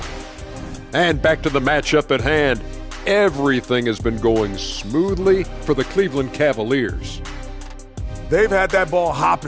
And back to the matchup at hand. Everything has been going smoothly for the Cleveland Cavaliers. They've had that ball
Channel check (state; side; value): identical; both; correlation 1.00